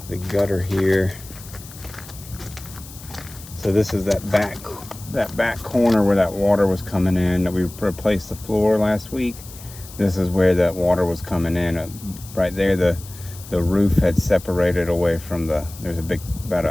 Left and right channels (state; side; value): noise; left; hiss, 17 dB below the sound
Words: the gutter here. So this is that back corner where that water was coming in that we replaced the floor last week. This is where that water was coming in. Right there, the roof had separated away from there's a big, about